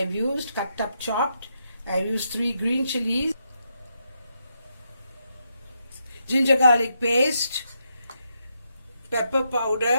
have used, cut up chopped. I have used 3 green chilies, ginger garlic paste, pepper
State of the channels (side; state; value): both; inverted; correlation -0.81